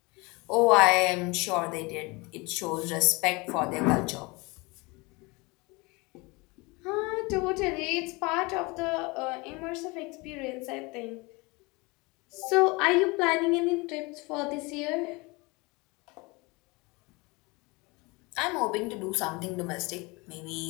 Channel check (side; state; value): right; quieter; 25.9 dB